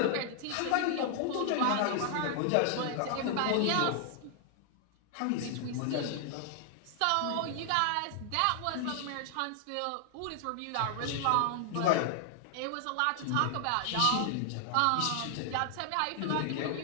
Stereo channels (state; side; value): different; both; correlation 0.00